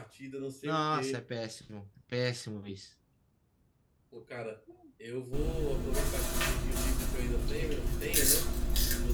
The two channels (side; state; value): both; identical; correlation 1.00